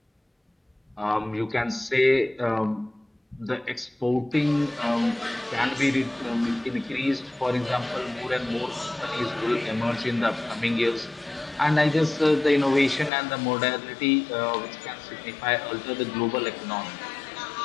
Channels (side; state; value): right; drops out; at 13.1 s